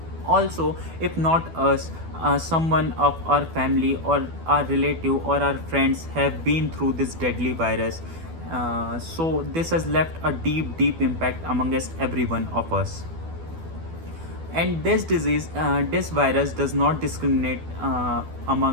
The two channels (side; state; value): left; late; 12 ms